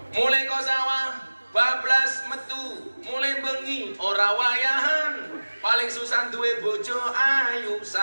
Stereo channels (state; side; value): inverted; both; correlation -1.00